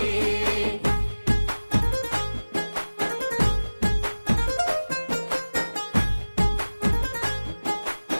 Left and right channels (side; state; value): both; inverted; correlation -1.00